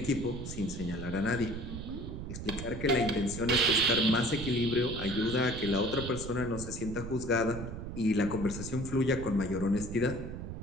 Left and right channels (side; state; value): right; noise; rumble, 8 dB below the sound